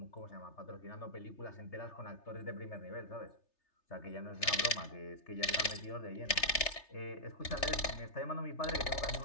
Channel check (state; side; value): late; right; 3.3 ms